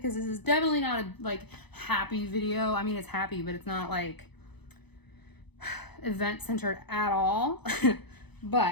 this is definitely not a like happy video. I mean, it's happy, but it's not like event centered at all.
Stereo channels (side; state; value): right; late; 0.98 ms